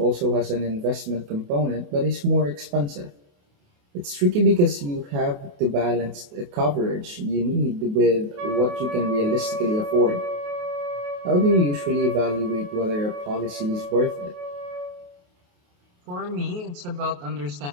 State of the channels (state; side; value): late; left; 28 ms